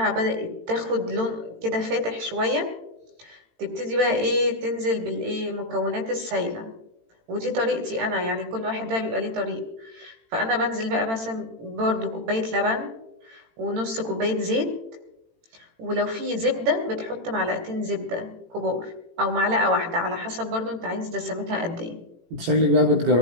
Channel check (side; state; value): left; late; 18 ms